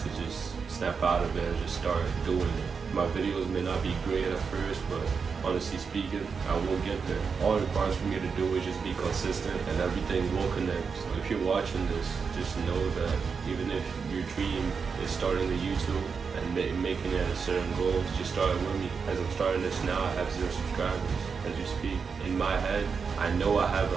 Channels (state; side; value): quieter; left; 5.6 dB